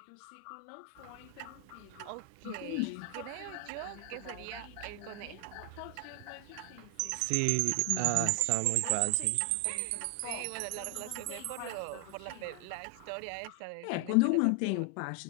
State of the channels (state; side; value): different; both; correlation 0.00